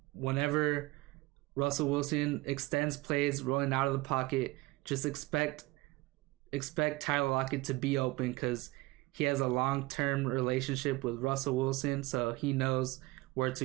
whenever Russell Wilson extends plays rolling out of the pocket, just expect Tyler Lockett to be open, because he has a long-term relationship with Russell Wilson, so he knows where to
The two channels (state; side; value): quieter; left; 20.8 dB